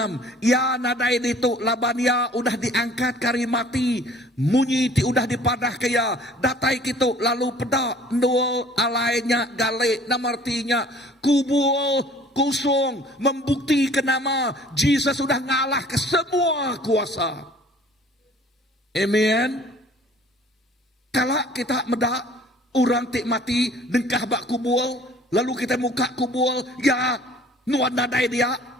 ya nadai itu laban ya udah diangkat kari mati. Munyi ti udah dipadah kaya. Datai kitu lalu pedak nul alainya gale. Nama artinya kubul kosong membuktikan nama Jesus sudah ngalah ke semua kuasa. Amen. Kalau kita medak orang tik mati dengkah bak kubul, lalu kita muka kubul, ya nuan nadai dia.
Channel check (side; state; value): both; normal; correlation 0.52